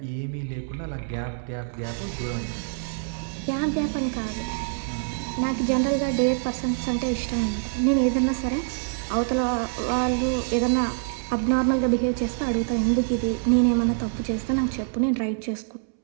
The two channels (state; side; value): silent; left; 61 dB below the other